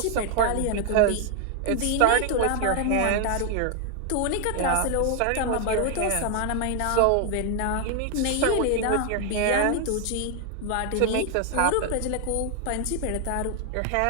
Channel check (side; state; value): both; different; correlation 0.00